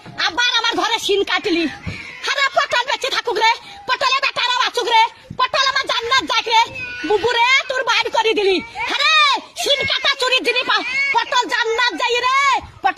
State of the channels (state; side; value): identical; both; correlation 1.00